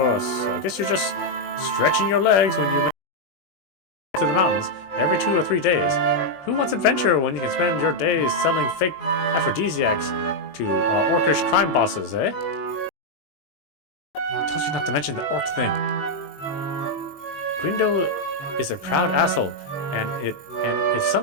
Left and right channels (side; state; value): right; late; 21 ms